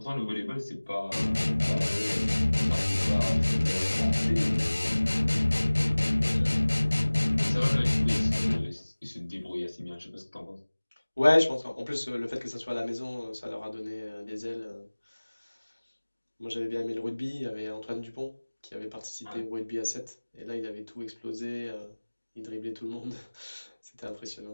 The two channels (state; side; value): inverted; both; correlation -1.00